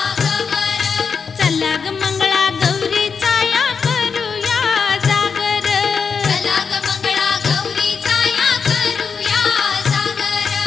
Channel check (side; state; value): right; quieter; 5.8 dB